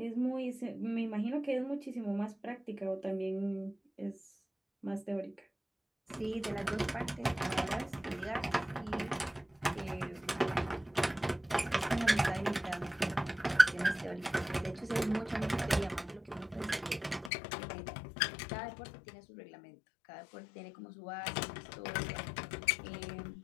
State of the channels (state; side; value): drops out; right; at 17.3 s